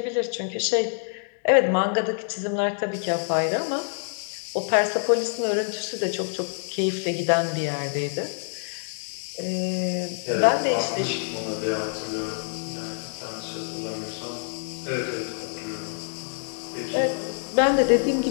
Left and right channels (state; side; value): silent; right; 60 dB below the other